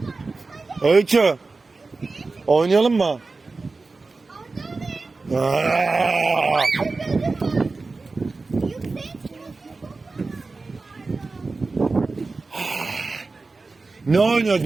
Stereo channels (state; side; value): quieter; left; 3.8 dB